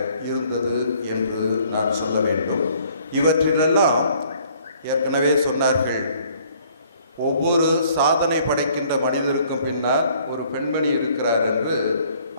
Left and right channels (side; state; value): both; inverted; correlation -0.60